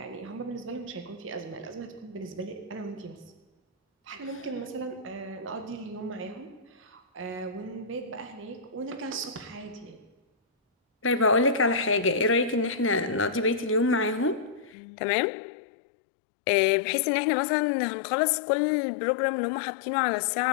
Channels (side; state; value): right; drops out; at 14.8 s